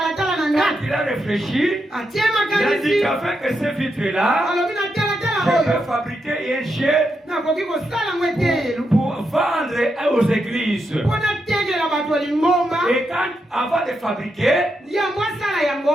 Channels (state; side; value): normal; both; correlation 0.83